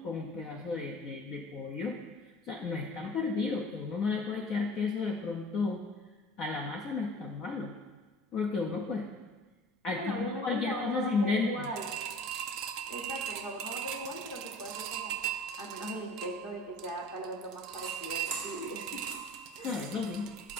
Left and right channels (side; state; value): both; normal; correlation 0.45